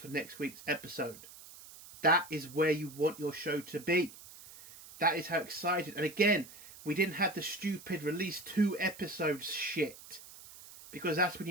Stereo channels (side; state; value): right; noise; hiss, 18 dB below the sound